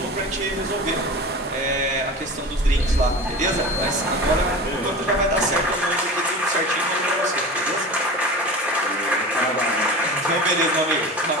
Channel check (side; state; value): both; normal; correlation 0.32